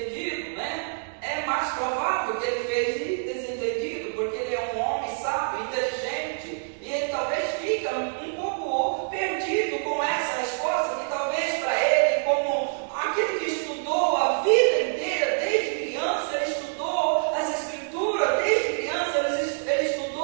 né? É mais provável que ele fez desentendido, porque ele é um homem sábio, inteligente, e ele talvez fica um pouco perdido com essa resposta, que talvez para ele, como aquele que estudou a vida inteira, desde criança, ele estudou as Escrituras, desde criança ele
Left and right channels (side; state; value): left; silent; digital silence